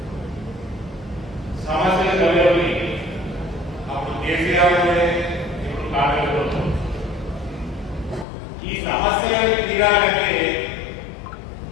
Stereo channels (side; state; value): right; drops out; at 8.2 s